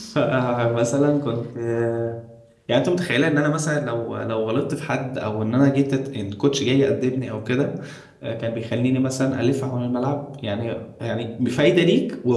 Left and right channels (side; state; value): both; identical; correlation 1.00